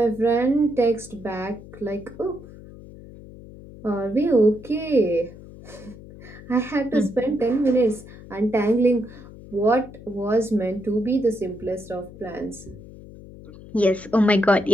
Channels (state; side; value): noise; left; hum, 17 dB below the sound